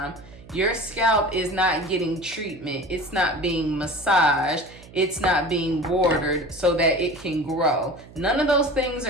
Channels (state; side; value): noise; right; hum, 21 dB below the sound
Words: Your scalp is not getting treatment. It's not being massaged. It's not being watered so that it can grow. None of those things